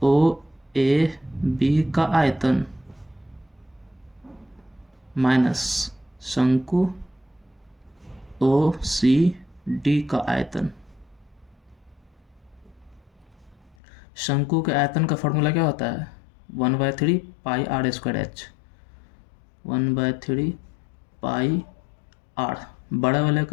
ओ ए बी का आयतन माइनस शंकु ओ सी डी का आयतन। शंकु के आयतन का फॉर्मूला क्या होता है, 1/3 pi r square h. 1/3 pi r, बड़े वाले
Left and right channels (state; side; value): drops out; right; at 13.8 s